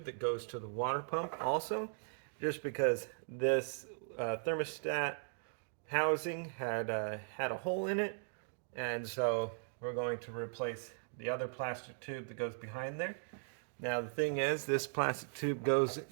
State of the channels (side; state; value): left; silent; digital silence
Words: that goes to the water pump also, just because this thermostat housing had a hole in it, and so we're going to replace the other plastic tube that goes behind there. Now the thing is, this plastic tube goes